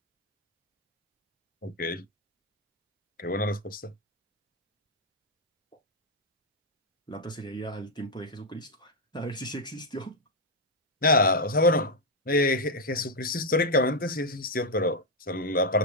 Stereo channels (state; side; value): normal; both; correlation 0.01